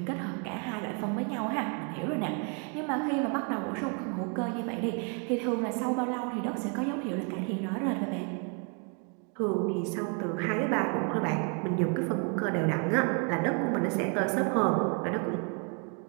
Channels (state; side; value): quieter; left; 37.8 dB